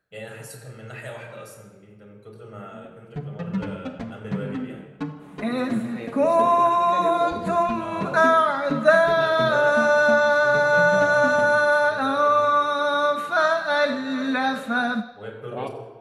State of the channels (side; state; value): both; identical; correlation 1.00